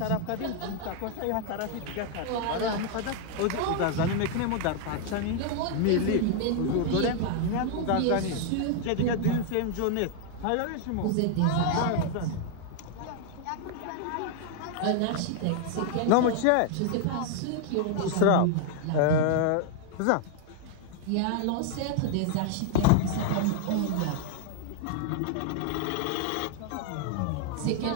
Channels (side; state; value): both; different; correlation 0.00